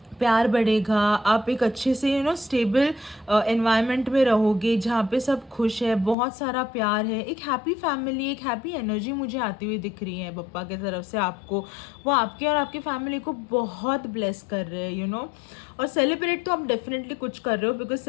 प्यार बढ़ेगा, आप एक अच्छे से स्टेबल एनवायरनमेंट में रहोगे जहाँ पे सब खुश है, बहुत सारा प्यार है, एक हैप्पी फैमिली, एक हैप्पी एनर्जी मुझे आती हुई दिख रही है पप्पा की तरफ से आपको। वो आपके और आपकी फैमिली को बहुत ब्लेस कर रहे हैं। और सेलिब्रेट तो आप डेफिनेटली कुछ कर रहे हो, बिकॉज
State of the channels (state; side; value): drops out; right; at 6.2 s